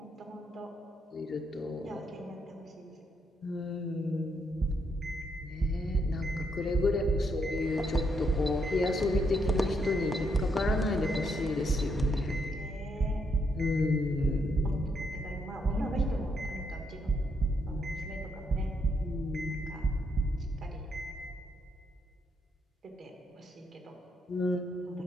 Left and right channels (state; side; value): normal; both; correlation 0.76